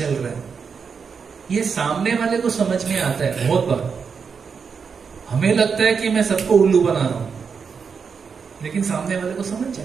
रहा है, ये सामने वाले को समझ में आता है। बहुत बार हमें लगता है कि मैं सबको उल्लू बना रहा हूं, लेकिन सामने वाले को समझ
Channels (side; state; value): left; quieter; 5.9 dB